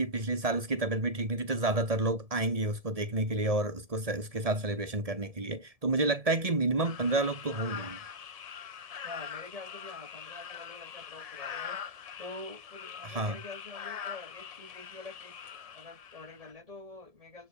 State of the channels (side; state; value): left; late; 1.7 ms